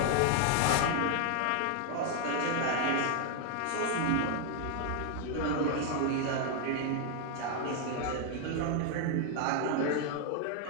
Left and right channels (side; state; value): both; different; correlation 0.00